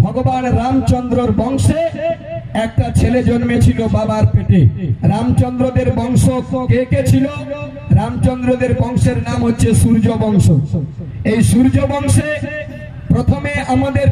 ভগবান রামচন্দ্রর বংশে একটা ছেলে জন্মেছিল বাবার পেটে। রামচন্দ্রদের বংশ কে কে ছিল? রামচন্দ্রদের বংশের নাম হচ্ছে সূর্য বংশ। এই সূর্য বংশে প্রথমে আমাদের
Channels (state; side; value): identical; both; correlation 1.00